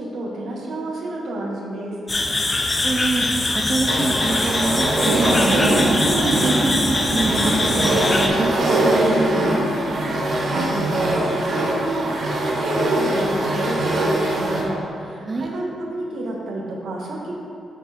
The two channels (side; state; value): both; normal; correlation 0.83